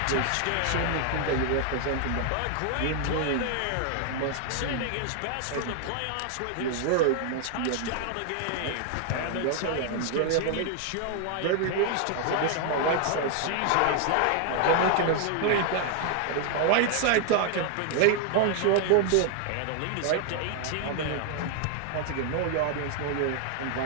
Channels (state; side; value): different; both; correlation 0.00